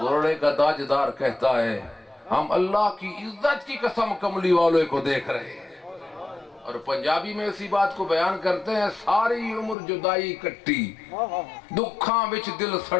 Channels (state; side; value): drops out; right; at 9.8 s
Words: کا تاجدار کہتا ہے ہم اللہ کی عزت کی قسم کملی والے کو دیکھ رہے ہیں، اور پنجابی میں اسی بات کو بیان کرتے ہیں ساری عمر جدائی کٹی، دکھاں وچ دل